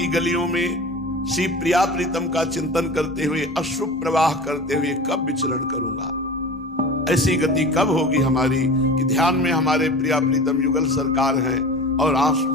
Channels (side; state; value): both; normal; correlation 0.35